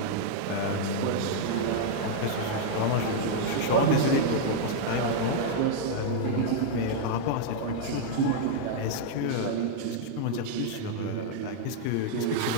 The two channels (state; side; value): different; both; correlation -0.01